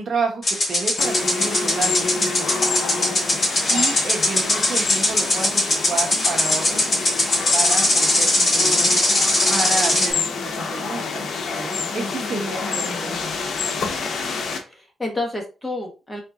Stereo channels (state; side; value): normal; both; correlation 0.81